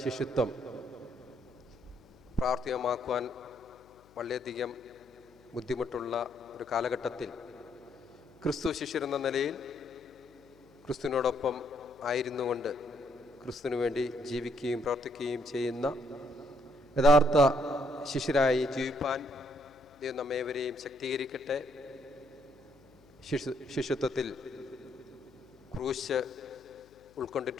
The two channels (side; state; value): left; noise; hum, 27 dB below the sound